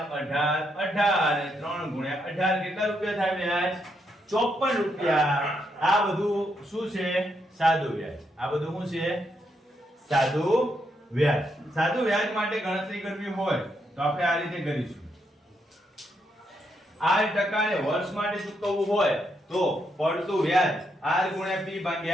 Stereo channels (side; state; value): both; normal; correlation 0.78